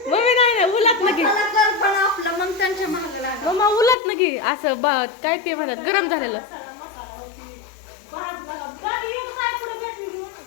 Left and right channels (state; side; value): drops out; right; at 4.0 s